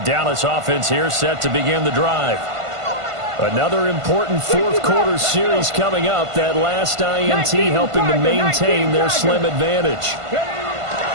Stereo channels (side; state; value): left; late; 1.5 ms